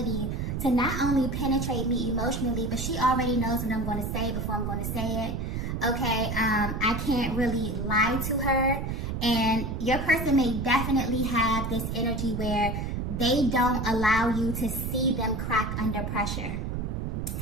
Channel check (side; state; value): right; noise; rumble, 3 dB below the sound